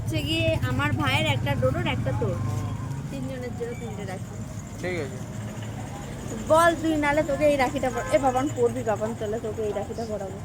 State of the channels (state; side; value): identical; both; correlation 1.00